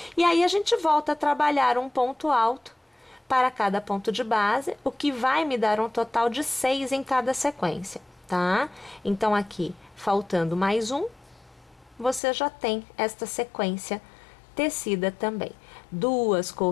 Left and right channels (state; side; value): drops out; right; at 12.2 s